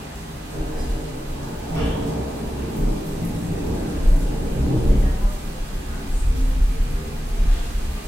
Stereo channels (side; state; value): both; normal; correlation 0.93